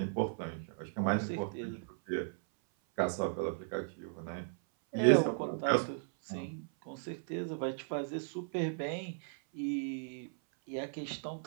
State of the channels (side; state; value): left; silent; 54 dB below the other